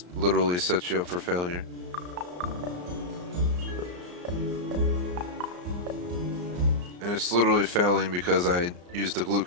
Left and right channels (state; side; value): late; left; 34 ms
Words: literally sets you up for failure. And it's literally failing because I used the